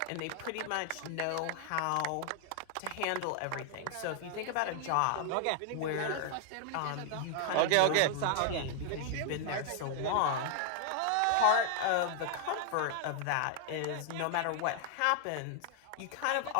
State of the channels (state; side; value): different; both; correlation 0.00